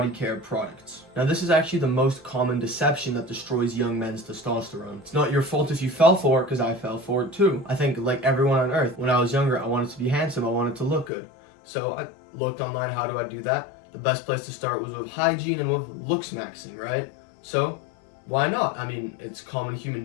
care products. Now this is actually the most common deception that destroys young men's testosterone. It's not your fault if you fell for it, because I fell for it too. I think like everyone on earth, when I was younger, I wanted to be handsome, I wanted to look good. So I looked online, how do I do that? The best place to start was with hygiene and with looks maxing, right? So why not? I mean, it's common human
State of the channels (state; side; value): drops out; right; at 11.1 s